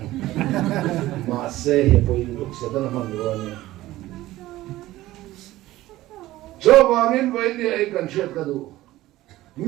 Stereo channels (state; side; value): quieter; left; 16.4 dB